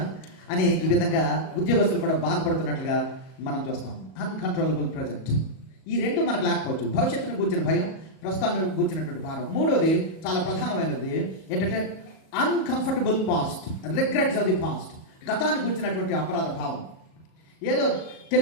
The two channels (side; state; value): right; late; 38 ms